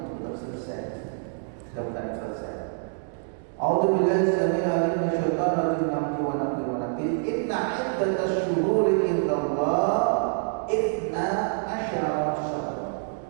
belum selesai, sudah bukan selesai. A'udzubillahi samil alim minasyaitonir rajim hamdi wa nafsi wa nafsi. Inna iddatash syuhuri indallah ithna asyara syahra.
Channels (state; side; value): silent; left; 61 dB below the other